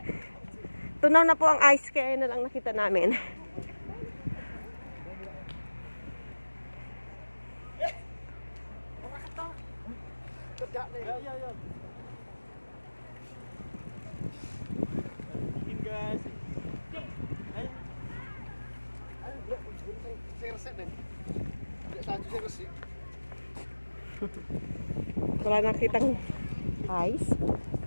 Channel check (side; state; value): both; inverted; correlation -1.00